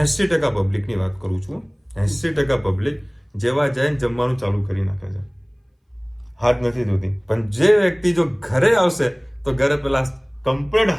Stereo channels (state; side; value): identical; both; correlation 1.00